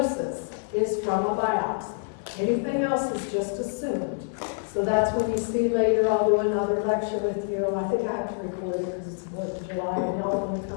is from a biopsy. Anything else is just assumed. So that's when you see later, I'll do another lecture with you. I think I have to record it because it's the 4th of July, and y'all are going to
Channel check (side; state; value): right; silent; digital silence